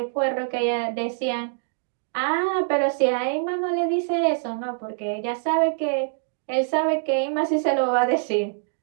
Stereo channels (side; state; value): left; silent; digital silence